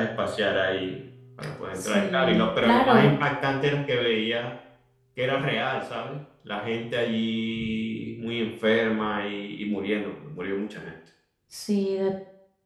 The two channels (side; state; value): both; identical; correlation 1.00